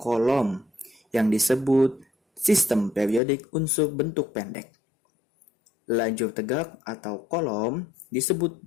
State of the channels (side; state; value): right; drops out; at 3.2 s